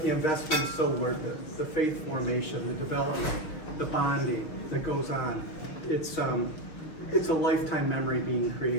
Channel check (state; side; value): late; right; 6.2 ms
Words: the investment is so worth it. The faith formation, the development, the bonding that goes on. It's a lifetime memory being